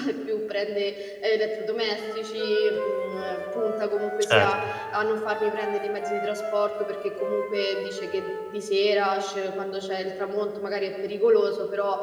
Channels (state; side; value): identical; both; correlation 1.00